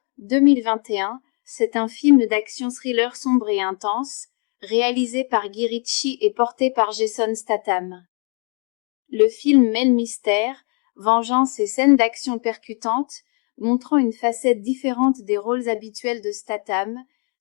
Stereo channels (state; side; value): quieter; right; 38.4 dB